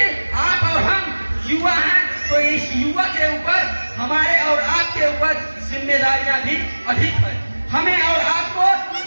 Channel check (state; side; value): inverted; both; correlation -1.00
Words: आप और हम युवा हैं, तो इस युवा के ऊपर हमारे और आपके ऊपर जिम्मेदारियां भी अधिक है। हमें और आपको